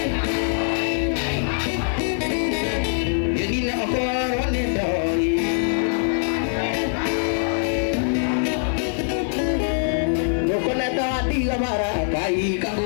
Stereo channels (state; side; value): silent; right; 64 dB below the other